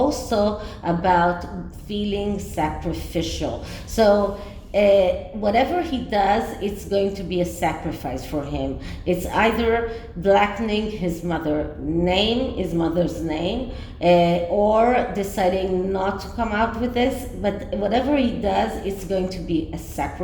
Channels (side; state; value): both; identical; correlation 1.00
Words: about feeling sacrificial. So whatever he does, it's going to be a sacrifice for him. It's either blackening his mother's name, or deciding not to come out with this. But whatever he does, it's going to be a